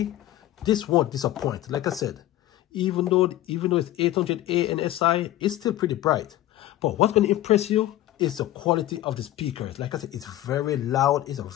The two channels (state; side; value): quieter; right; 14.4 dB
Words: this won't disappoint. Like I said, even though it's 800A and SI, it's still pretty bright. But what's going to impress you is the quality of the speakers. Like I said, it's very loud. It's a